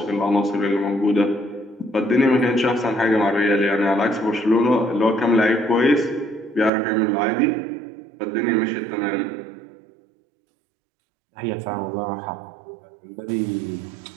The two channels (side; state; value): left; drops out; at 6.7 s